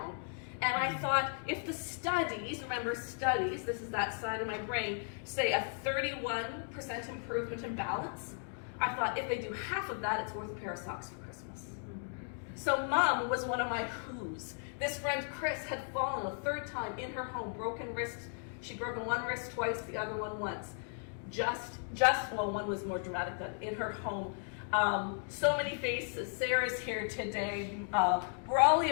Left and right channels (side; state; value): right; silent; 54 dB below the other